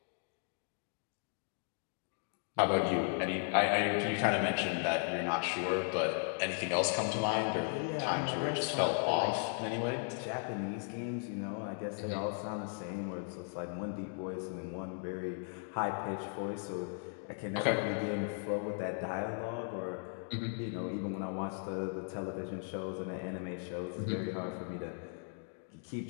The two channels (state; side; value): silent; right; 53 dB below the other